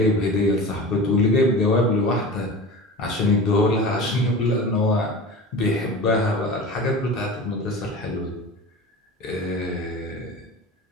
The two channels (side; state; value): both; normal; correlation 0.33